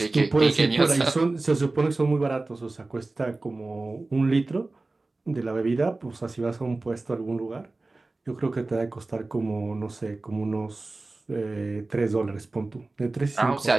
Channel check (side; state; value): left; quieter; 3.2 dB